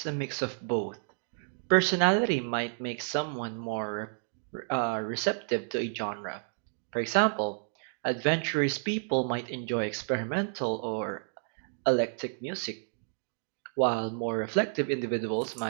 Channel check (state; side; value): silent; left; digital silence